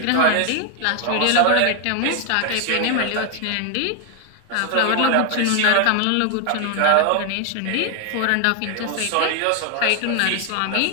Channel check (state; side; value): different; both; correlation 0.00